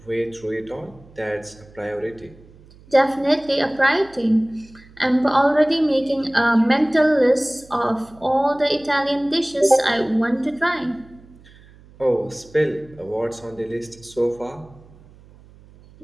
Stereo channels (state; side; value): noise; right; hum, 24 dB below the sound